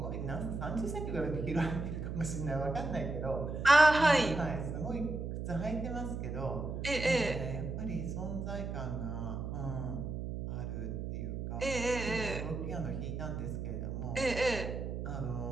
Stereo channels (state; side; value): noise; right; hum, 4 dB below the sound